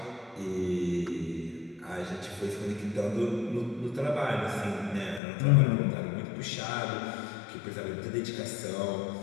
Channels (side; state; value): right; drops out; at 5.2 s